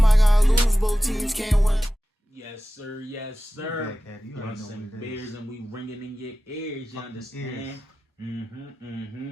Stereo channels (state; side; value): normal; both; correlation 0.95